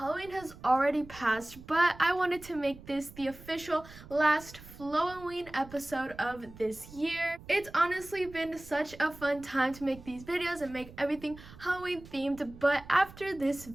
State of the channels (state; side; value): noise; right; rumble, 18 dB below the sound